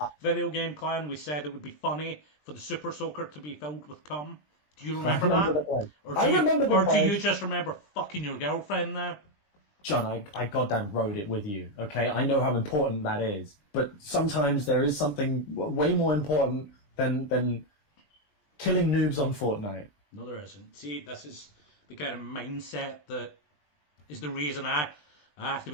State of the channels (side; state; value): right; late; 20 ms